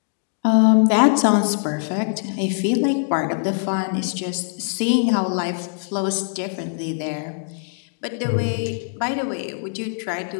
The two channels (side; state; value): right; silent; digital silence